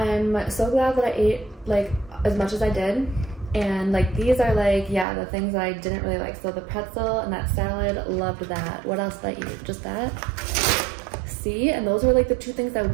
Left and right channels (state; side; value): drops out; left; at 5.1 s